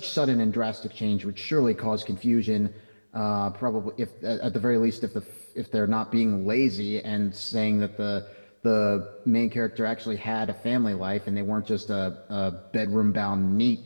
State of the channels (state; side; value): inverted; both; correlation -1.00